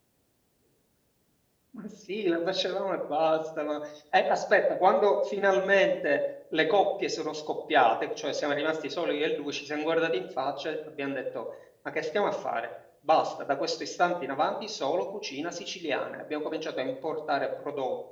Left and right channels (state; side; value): identical; both; correlation 1.00